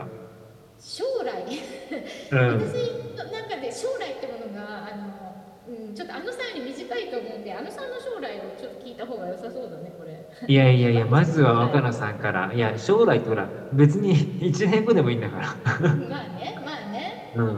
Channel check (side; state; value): both; identical; correlation 1.00